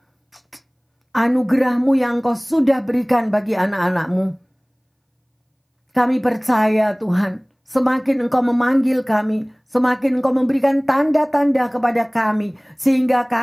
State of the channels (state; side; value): identical; both; correlation 1.00